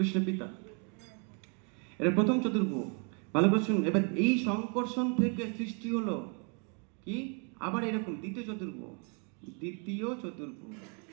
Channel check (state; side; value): quieter; left; 38.2 dB